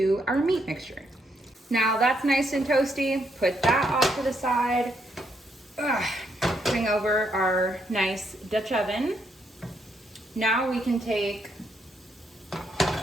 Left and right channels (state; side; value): normal; both; correlation 0.75